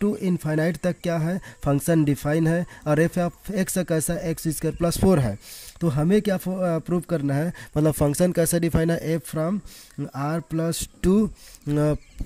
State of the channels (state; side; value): identical; both; correlation 1.00